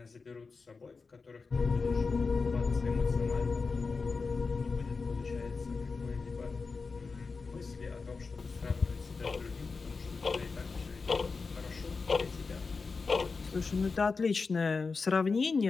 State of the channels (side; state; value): right; quieter; 4.5 dB